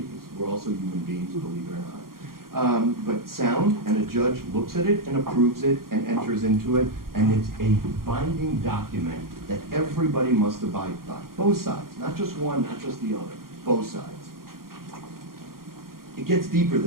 we're also human beings, believe it or not. But sound, and a judge looks at it and approves it and enters into it, and it's a binding document that everybody must abide by. Both sides, not just one, not just the other, both sides. It gets deeper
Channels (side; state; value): left; late; 0.92 ms